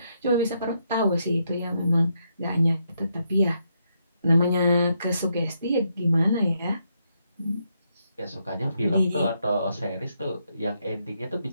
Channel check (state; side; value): inverted; both; correlation -0.78